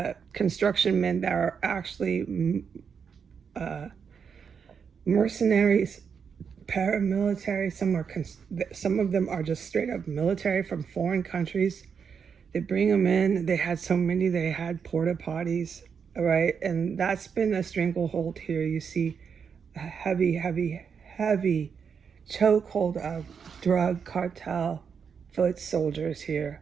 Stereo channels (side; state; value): left; quieter; 6.5 dB